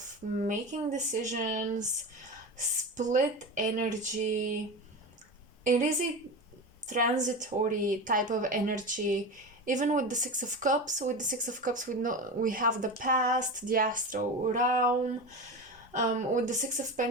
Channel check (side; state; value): both; normal; correlation 0.25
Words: making decisions, split energy. It is a transitory type of energy. Even with the Six of Cups, we have the past, the astral realm. With the Six of